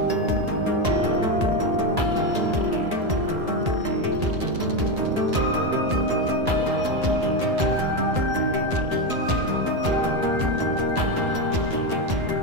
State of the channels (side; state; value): left; late; 1.8 ms